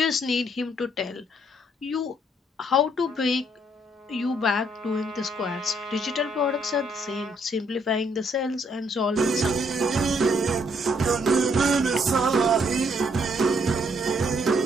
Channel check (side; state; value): both; normal; correlation 0.69